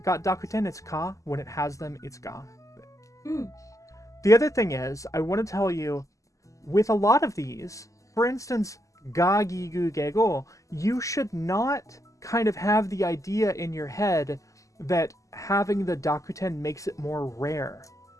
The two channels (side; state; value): right; late; 0.16 ms